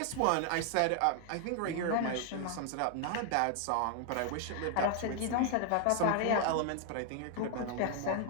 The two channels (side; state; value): both; different; correlation 0.00